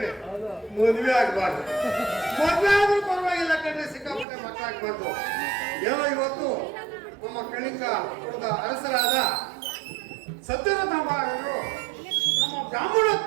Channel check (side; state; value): left; drops out; at 4.2 s